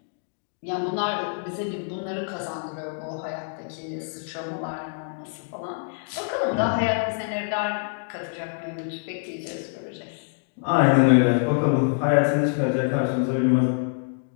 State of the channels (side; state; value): right; silent; digital silence